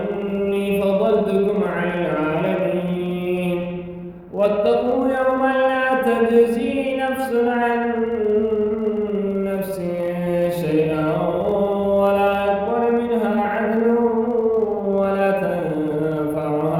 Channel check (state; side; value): identical; both; correlation 1.00